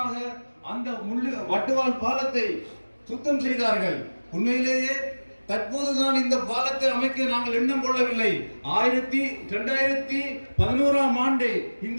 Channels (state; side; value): inverted; both; correlation -1.00